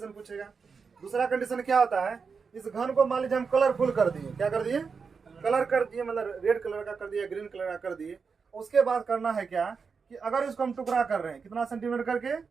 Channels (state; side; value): quieter; left; 5.4 dB